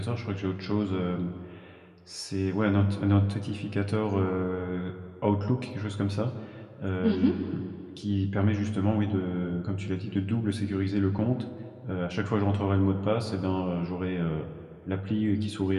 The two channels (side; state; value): both; identical; correlation 1.00